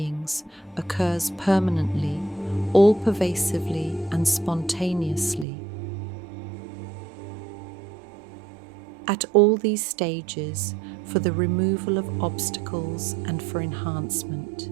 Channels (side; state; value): left; drops out; at 5.5 s